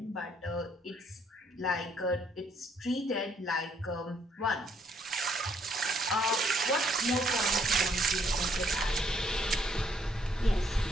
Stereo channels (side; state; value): both; normal; correlation 0.68